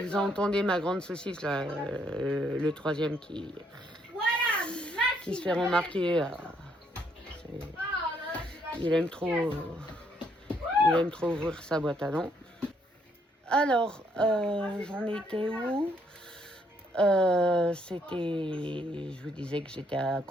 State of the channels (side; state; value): both; normal; correlation 0.71